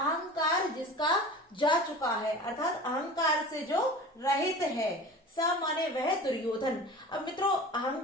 जिसका जा चुका है, अर्थात अहंकार से जो रहित है। स माने वह दुर्योधन। अब मित्रों,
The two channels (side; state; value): both; normal; correlation 0.37